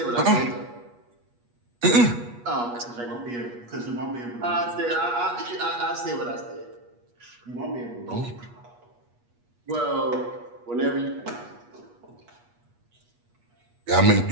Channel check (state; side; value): late; left; 8.3 ms